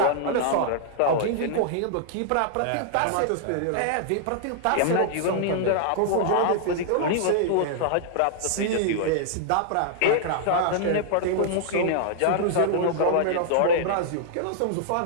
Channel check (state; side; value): different; both; correlation -0.01